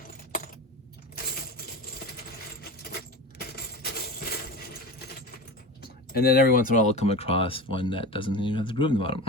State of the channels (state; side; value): normal; both; correlation 0.29